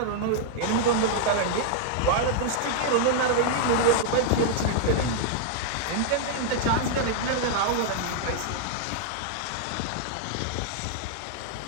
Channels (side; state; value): both; different; correlation -0.01